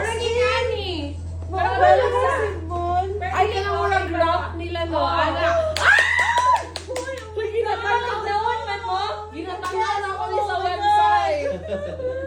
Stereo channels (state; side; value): identical; both; correlation 1.00